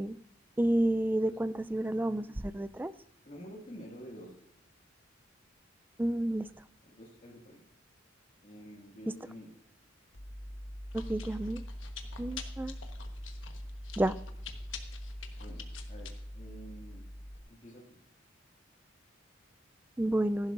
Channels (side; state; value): both; normal; correlation 0.94